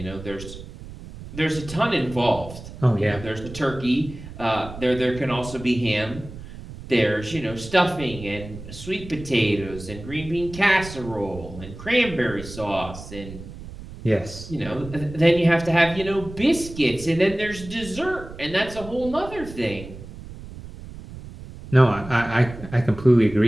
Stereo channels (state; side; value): noise; right; rumble, 14 dB below the sound